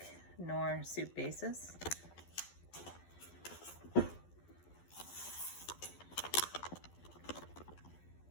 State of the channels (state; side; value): late; right; 12 ms